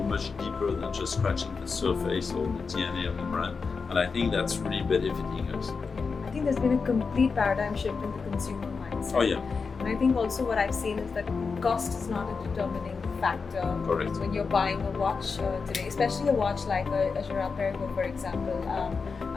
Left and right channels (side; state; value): right; quieter; 5.0 dB